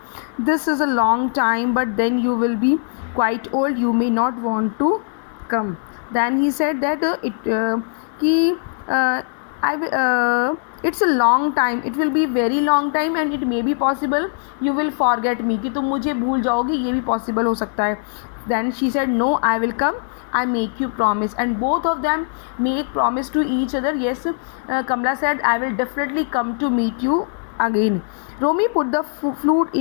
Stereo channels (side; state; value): right; silent; 64 dB below the other